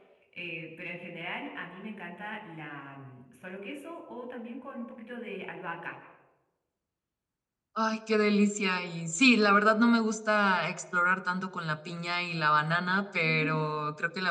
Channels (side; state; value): both; identical; correlation 1.00